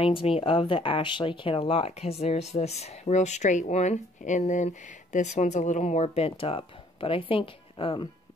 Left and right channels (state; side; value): normal; both; correlation 0.61